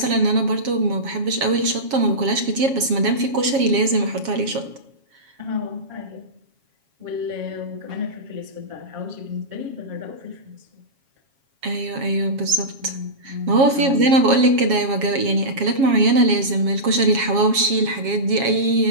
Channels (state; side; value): late; left; 7.3 ms